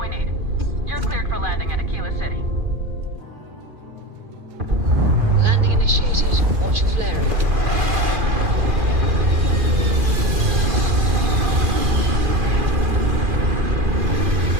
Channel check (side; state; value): left; late; 2.4 ms